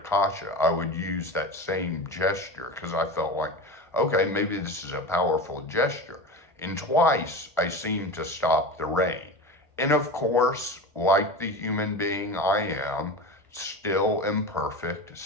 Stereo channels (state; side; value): normal; both; correlation 0.27